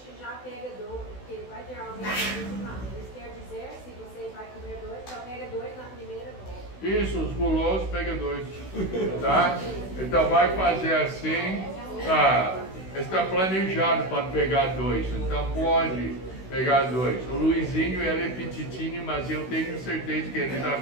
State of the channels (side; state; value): right; late; 16 ms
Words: já pega 2, porque vai ter alguém que isso quer dizer, se você vai comer 2, só pega 2 na primeira volta. Isso, os gulosos pega 2, tá? Então vai fazer assim, tá? Está planejado para pegar 2, então pode pegar 2. O Luizinho, ele é petitinho, mas eu tenho certeza que ele dá